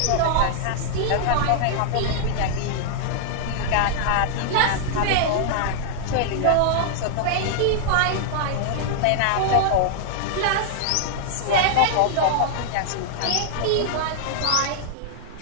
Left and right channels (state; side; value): different; both; correlation -0.01